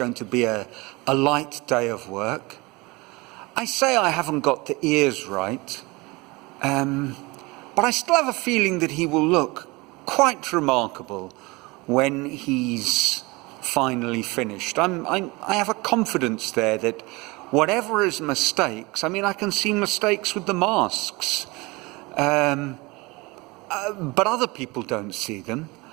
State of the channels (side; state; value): left; quieter; 24.2 dB